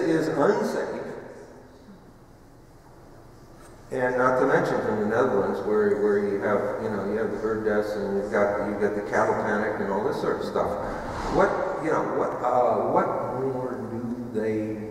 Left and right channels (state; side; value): identical; both; correlation 1.00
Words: unsafe. And not to mention from the Netherlands, where you have, you know, you have the bird deaths, and you've got the cattle panic and all this sort of stuff. What more do they